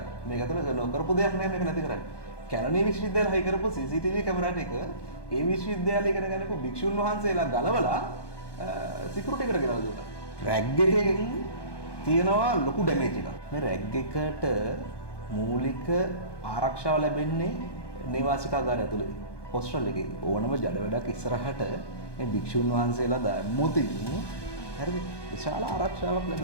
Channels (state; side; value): late; right; 1.2 ms